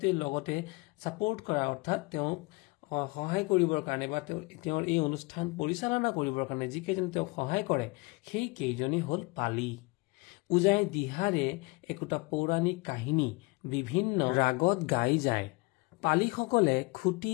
লগতে ছাপোৰ্ট কৰা অৰ্থাৎ তেওঁক সহায় কৰিবৰ কাৰণে বা তেওঁৰ এই অনুষ্ঠান পৰিচালনা কৰিবৰ কাৰণে যিকেইজন তেওঁক সহায় কৰে সেই কেইজনেই হ'ল পালি। ওজাই দিহাৰে একোটা পৌৰাণিক কাহিনী বিভিন্ন ৰাগত গাই যায়। পালিসকলে খুটি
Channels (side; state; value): right; quieter; 26.3 dB